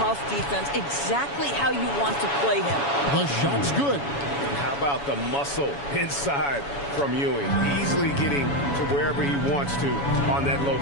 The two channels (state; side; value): late; right; 7.1 ms